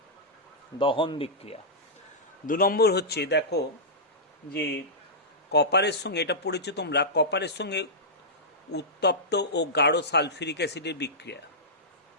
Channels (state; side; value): normal; both; correlation -0.12